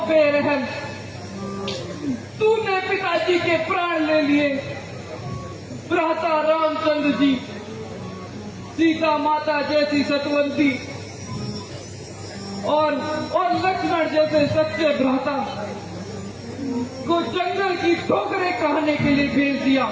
बेरहम, तूने पिताजी के प्राण ले लिए। भ्राता रामचंद्र जी, सीता माता जैसी सतवंती और लक्ष्मण जैसे सच्चे भ्राता को जंगल की ठोकरें कहने के लिए भेज दिया।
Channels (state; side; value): identical; both; correlation 1.00